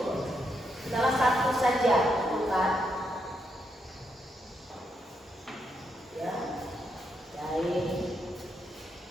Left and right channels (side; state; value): both; normal; correlation 0.80